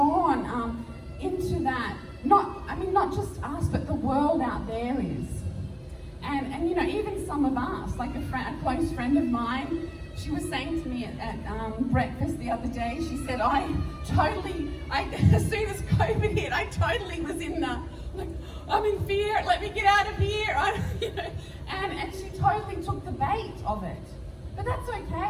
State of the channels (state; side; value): identical; both; correlation 1.00